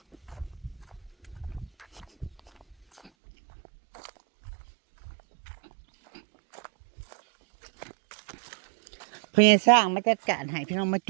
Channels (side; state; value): left; drops out; at 3.1 s